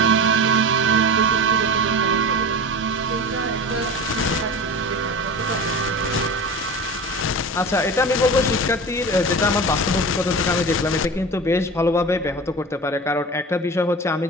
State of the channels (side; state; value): both; normal; correlation 0.31